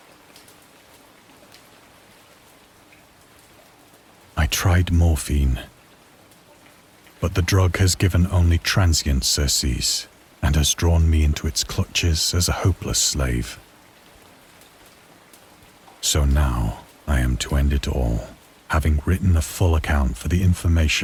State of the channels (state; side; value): identical; both; correlation 1.00